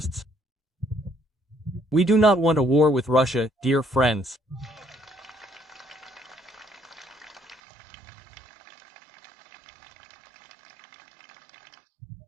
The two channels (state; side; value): drops out; left; at 7.6 s